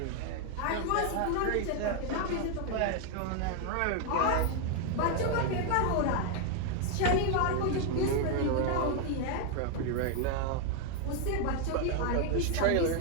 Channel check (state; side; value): different; both; correlation 0.01